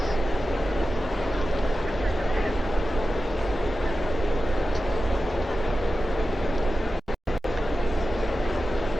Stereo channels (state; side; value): normal; both; correlation 0.93